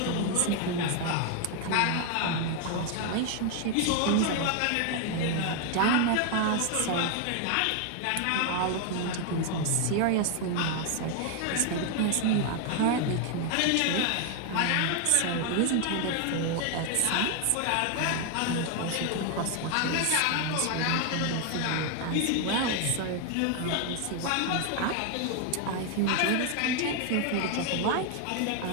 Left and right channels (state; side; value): different; both; correlation 0.01